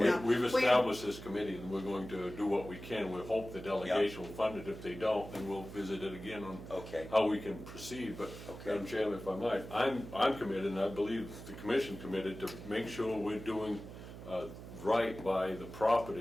We've established this committee, and we're going to do what we can. We hope the delegation will fund it. If they don't, then we'll visit it again on Okay. how we can proceed. But, Okay. Madam Chairman, if I might, I'm committed, and I believe the commission committed, to make sure we're doing right by the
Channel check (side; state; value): right; noise; hum, 13 dB below the sound